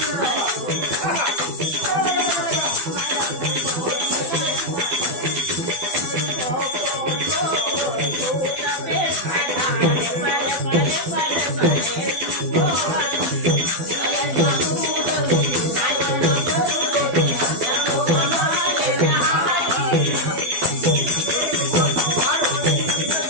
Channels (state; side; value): late; left; 12 ms